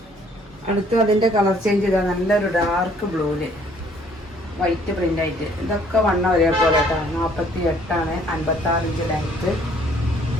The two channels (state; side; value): normal; both; correlation 0.61